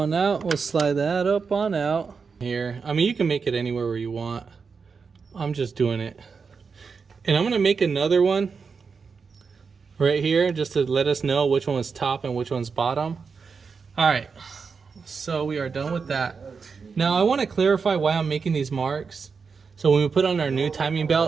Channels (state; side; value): quieter; left; 5.3 dB